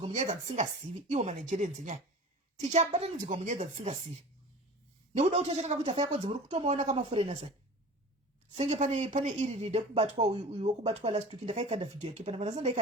munyaya dzatisingazivi. Iwo manigerians nyaya tichabatanidzirwa munyaya dzatisingazivi nekuda kuti achakanga kuti afa yakodzi muri kutomaona kamaforeigners aya senge pane iri ride kubatwa uyu wokubatwa last week ndakaikanda video yake pana vanasa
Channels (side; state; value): both; normal; correlation 0.38